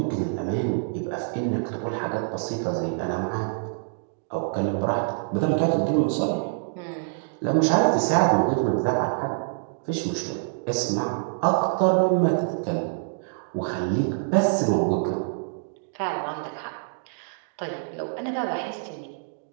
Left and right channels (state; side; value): silent; left; digital silence